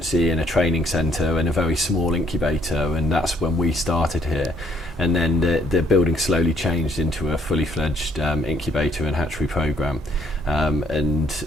and a training centre and a very small incubator, and that's when we started here. And then the building slowly changed into a fully fledged incubator and hatchery programme.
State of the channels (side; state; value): both; normal; correlation 0.66